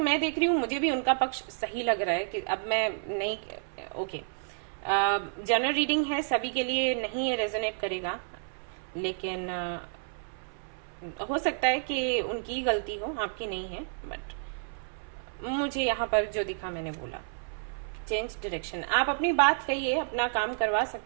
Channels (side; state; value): left; silent; 58 dB below the other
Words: देख रही हूँ मुझे भी उनका पक्ष सही लग रहा है कि अब मैं नहीं, ओके, जनरल रीडिंग है, सभी के लिए नहीं ये रेजोनेट करेगा, लेकिन हो सकता है कि उनकी गलती हो, आपकी नहीं है। बट मुझे यहाँ पर जो दिखा मैंने बोला, चेंज डायरेक्शन। आप अपनी बात कहिए, अपना काम करवा